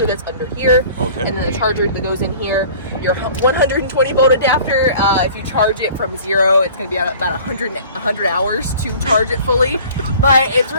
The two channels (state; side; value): inverted; both; correlation -0.47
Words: that's under here, and then the charger that goes in here. Your 120 volt adapter, if you charge it from 0, it's going to be about 100 hours to charge it fully, but it's